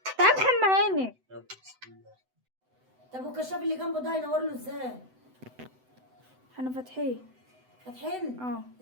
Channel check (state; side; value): late; left; 7.9 ms